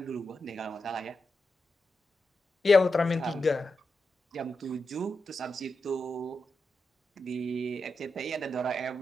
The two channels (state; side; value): normal; both; correlation 0.88